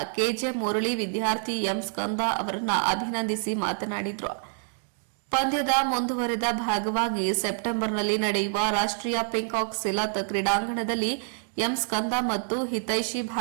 ಕೆಜೆ ಮುರಳಿ ವಿದ್ಯಾರ್ಥಿ ಎಂ ಸ್ಕಂದ ಅವರನ್ನ ಅಭಿನಂದಿಸಿ ಮಾತನಾಡಿದರು. ಪಂದ್ಯದ ಮುಂದುವರೆದ ಭಾಗವಾಗಿ ಸೆಪ್ಟೆಂಬರ್ನಲ್ಲಿ ನಡೆಯುವ ರಾಷ್ಟ್ರೀಯ ಪಿಂಕಾಕ್ ಸಿಲತ್ ಕ್ರೀಡಾಂಗಣದಲ್ಲಿ ಎಂ ಸ್ಕಂದ ಮತ್ತು ಹಿತೈಷಿ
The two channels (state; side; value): silent; left; 60 dB below the other